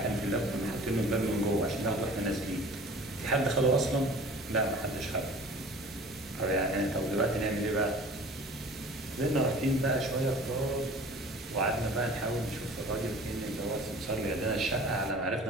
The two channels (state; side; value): normal; both; correlation 0.44